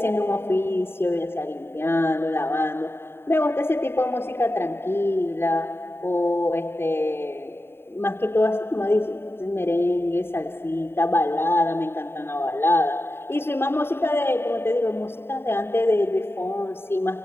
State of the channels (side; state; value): right; late; 0.11 ms